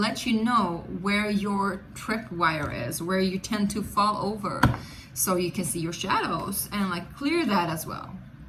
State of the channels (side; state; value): both; identical; correlation 1.00